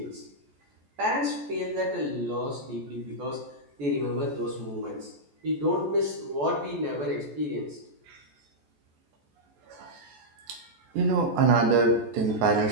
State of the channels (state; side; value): late; left; 14 ms